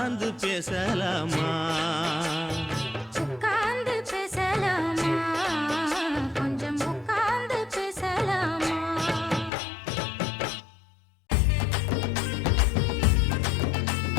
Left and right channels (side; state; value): right; drops out; at 9.5 s